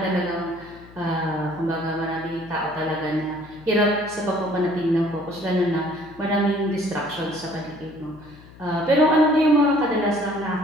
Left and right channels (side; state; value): left; noise; hum, 21 dB below the sound